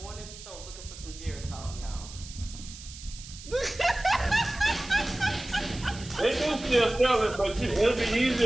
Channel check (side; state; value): right; noise; hiss, 15 dB below the sound